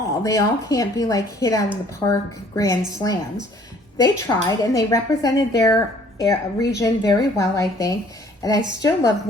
They all can't be like hit out of the park grand slams. They tried, and they represented their region very well, I think. And I still love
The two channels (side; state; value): both; normal; correlation 0.57